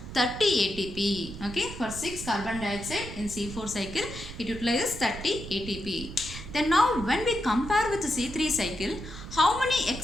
30 ATP. Okay, for 6 carbon dioxide in C4 cycle, it utilizes 30 ATP. Then now when we compare with the C3 cycle, how many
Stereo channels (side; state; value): right; noise; rumble, 11 dB below the sound